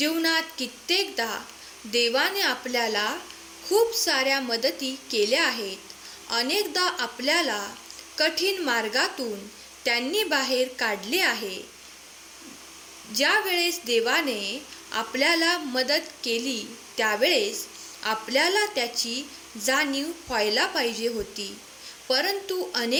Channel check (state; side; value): identical; both; correlation 1.00